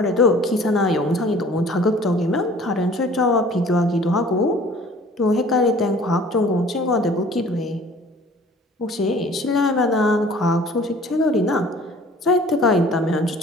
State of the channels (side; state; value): both; normal; correlation 0.50